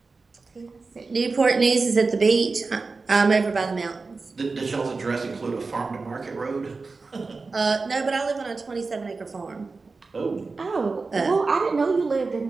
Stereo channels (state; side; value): quieter; left; 4.1 dB